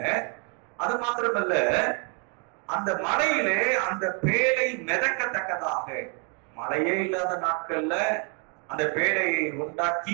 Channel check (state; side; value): quieter; left; 37.3 dB